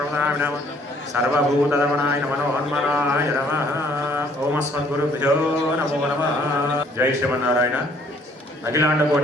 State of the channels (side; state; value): both; normal; correlation 0.61